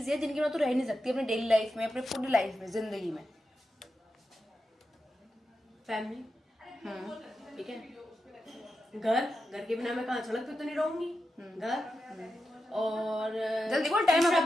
है जिनके बिना तू रह नहीं सकती अपनी डेली लाइफ में, अपने पूरी लाइफ में, जिंदगी में? फैमिली, ठीक है। घर के बिना मैं कहाँ सड़क पे तो नहीं रहूंगी। घर और जल्दी बोल, टाइम है।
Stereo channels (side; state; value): both; normal; correlation 0.89